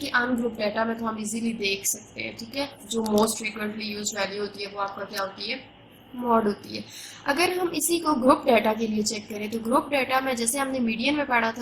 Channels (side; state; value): both; identical; correlation 1.00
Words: अनग्रुप डाटा में तो हम इजीली देख सकते हैं, ठीक है, जो मोस्ट फ्रीक्वेंटली यूज वैल्यू होती है वो आपका क्या होती है, मॉड होती है। अगर हम इसी को ग्रुप डाटा के लिए चेक करें तो ग्रुप डाटा में जैसे हमने मीडियन में पढ़ा